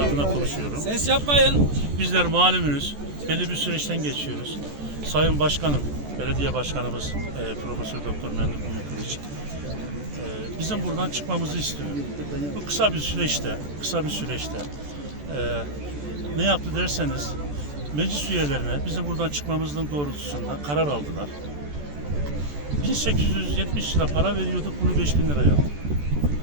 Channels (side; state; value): left; late; 14 ms